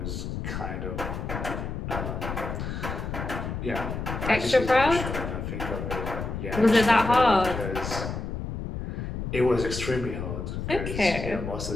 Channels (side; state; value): left; noise; rumble, 5 dB below the sound